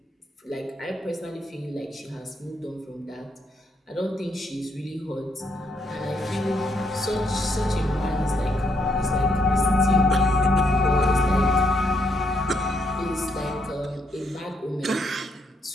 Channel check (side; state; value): both; normal; correlation 0.75